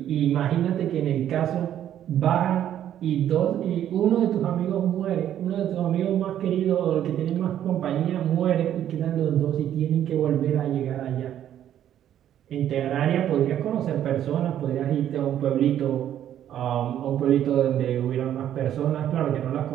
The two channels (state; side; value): quieter; left; 10.9 dB